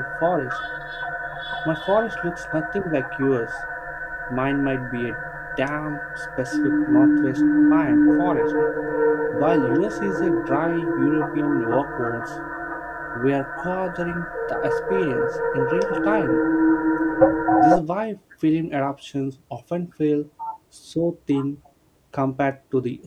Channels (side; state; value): both; identical; correlation 1.00